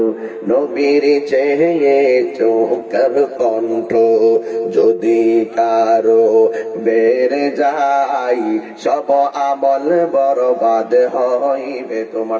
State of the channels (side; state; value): both; identical; correlation 1.00